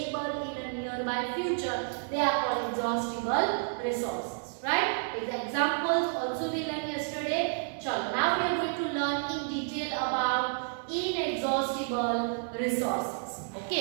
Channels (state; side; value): silent; left; 57 dB below the other